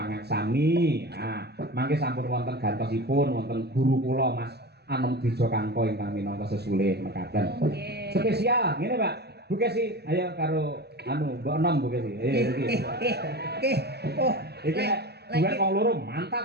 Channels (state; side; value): late; left; 0.48 ms